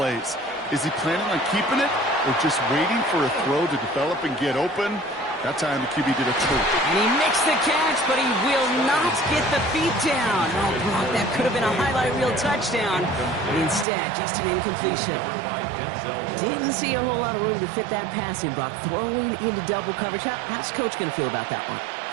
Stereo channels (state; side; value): drops out; left; at 13.9 s